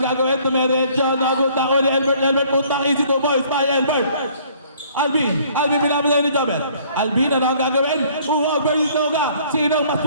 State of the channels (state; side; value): inverted; both; correlation -0.58